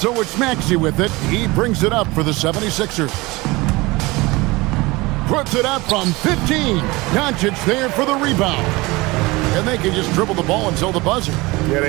it's Maxey with it. He brings it up for the 76ers. Puts it up from 15. Doncic there for the rebound. And they can just dribble the ball until the buzzer. Yeah,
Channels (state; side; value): quieter; left; 22.5 dB